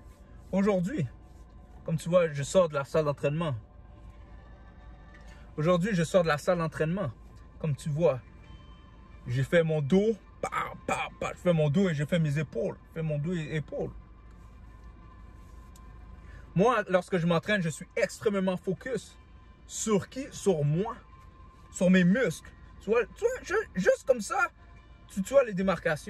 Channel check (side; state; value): both; identical; correlation 1.00